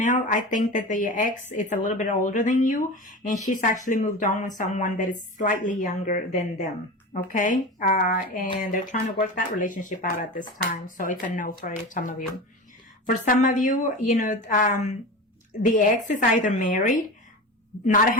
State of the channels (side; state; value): both; normal; correlation 0.28